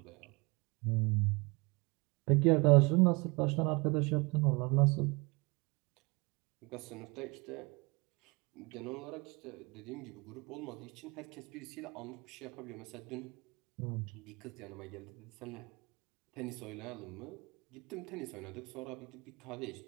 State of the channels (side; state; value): left; quieter; 27.4 dB